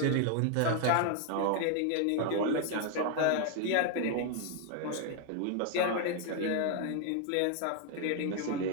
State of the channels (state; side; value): different; both; correlation 0.00